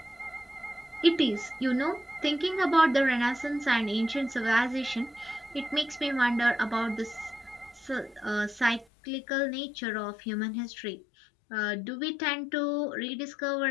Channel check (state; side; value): drops out; right; at 8.8 s